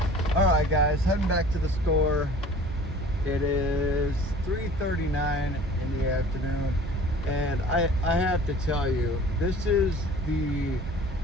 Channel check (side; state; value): both; normal; correlation 0.47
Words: Alright guys, heading back to the store. It is 3:39 in the afternoon, and I have to tell you, this is the